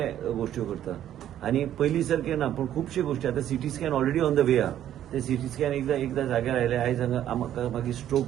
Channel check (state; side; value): quieter; left; 11.3 dB